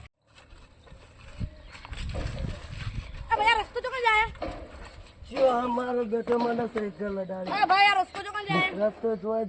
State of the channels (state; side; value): identical; both; correlation 1.00